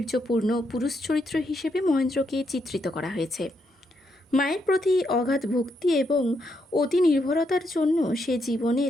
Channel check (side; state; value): both; normal; correlation 0.79